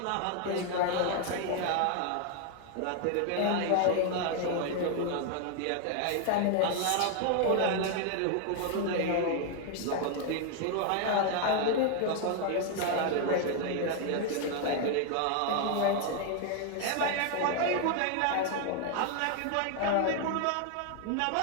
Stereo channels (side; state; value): both; different; correlation 0.00